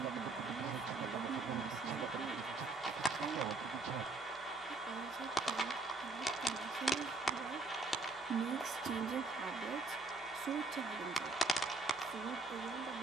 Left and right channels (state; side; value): quieter; left; 3.3 dB